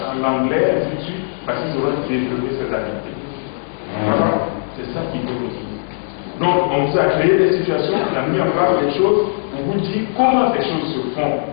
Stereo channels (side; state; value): right; silent; 67 dB below the other